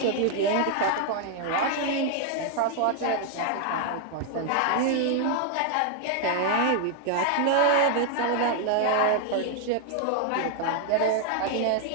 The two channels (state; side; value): different; both; correlation 0.00